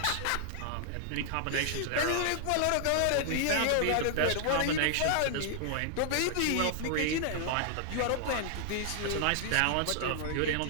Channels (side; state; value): both; different; correlation -0.01